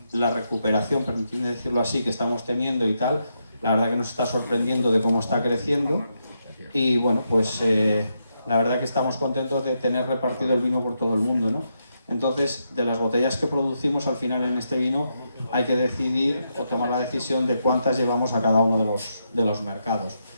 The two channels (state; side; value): inverted; both; correlation -0.82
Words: la recuperación, permitidme decirlo así, que estamos teniendo y tal, la verdad que nos está sorprendiendo de cómo está creciendo y bueno, pues la verdad que estamos contentos de tener repartido el vino por todo el mundo, ¿no? Entonces, de las botellas que producimos, al final en este vino hay que decidir o tomar la decisión de cuántas llevamos a cada uno de los mercados.